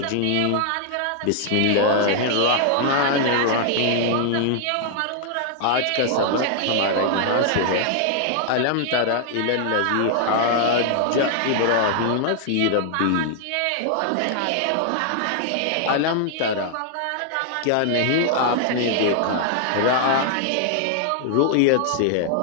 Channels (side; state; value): both; different; correlation 0.00